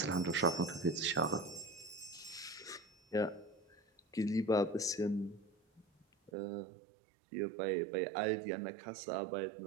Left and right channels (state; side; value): drops out; left; at 6.3 s